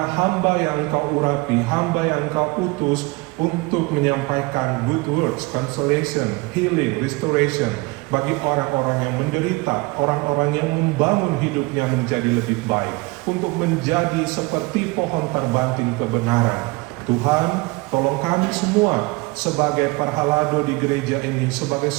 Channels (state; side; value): quieter; left; 24.9 dB